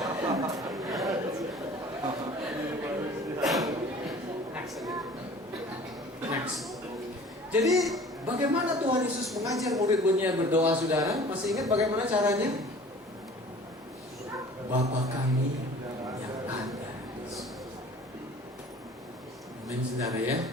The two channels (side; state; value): both; normal; correlation 0.47